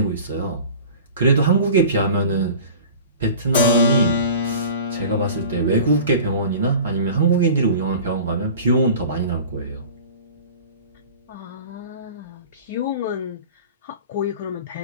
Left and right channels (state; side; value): inverted; both; correlation -0.40